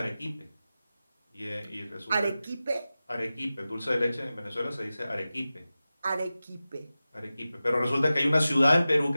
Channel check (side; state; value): both; inverted; correlation -0.95